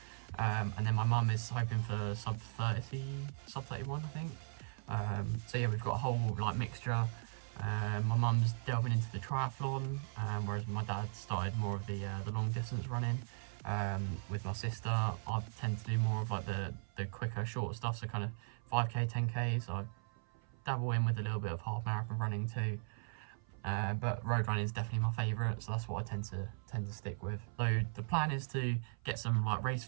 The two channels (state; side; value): silent; left; 52 dB below the other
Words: And then my mum is hoping for sub 30, sub 31 I think. So yeah, we've got a whole like mixture. My mum's delving into the triathlon, whereas my dad started more of the long distance running. With my sister, I tend to do more of like the quicker, shorter stuff, so kind of 5k, 10k. So I dabble in with a little bit of half marathon running too. But road running is definitely my favourite, so that's what I tend to stick with. So the plan is to get some like race